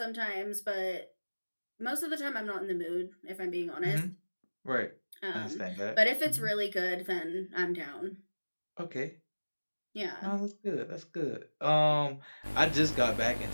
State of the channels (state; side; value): inverted; both; correlation -1.00